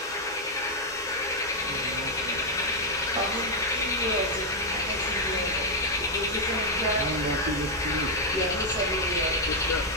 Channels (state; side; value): normal; both; correlation 0.01